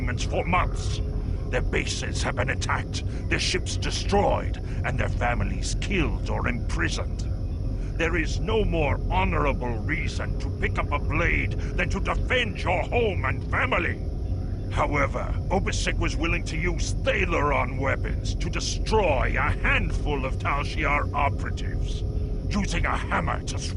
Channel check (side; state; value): both; identical; correlation 1.00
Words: for months. Their bases have been attacked, their ships destroyed, and their families killed or imprisoned. There is no more honorable reason to pick up a blade than to defend your home and family. However, Obisek was willing to use Thalaron weapons to destroy a handful of Tal Shiar operatives. Using a hammer to